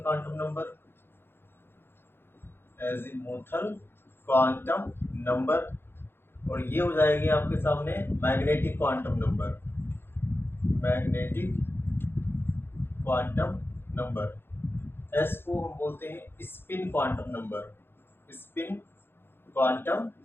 number, azimuthal quantum number. और ये हो जाएगी आपके सामने magnetic quantum number, magnetic quantum number. S को हम बोलते हैं spin quantum number, spin quantum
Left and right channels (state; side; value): late; right; 0.11 ms